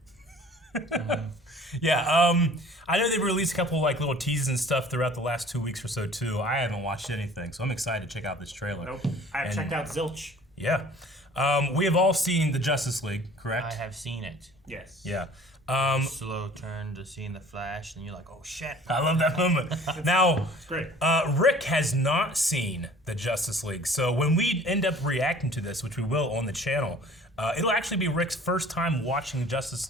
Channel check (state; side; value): normal; both; correlation 0.49